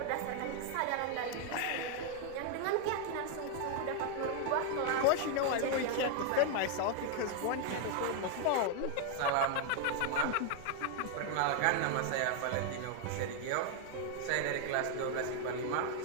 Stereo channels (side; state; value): both; different; correlation 0.00